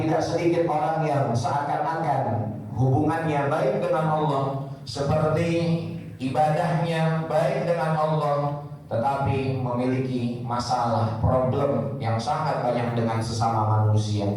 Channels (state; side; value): identical; both; correlation 1.00